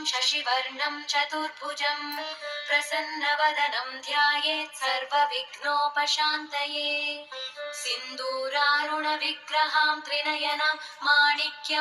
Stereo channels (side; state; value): both; identical; correlation 1.00